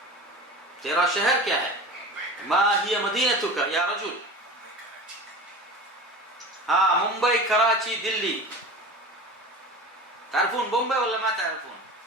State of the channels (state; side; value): normal; both; correlation 0.33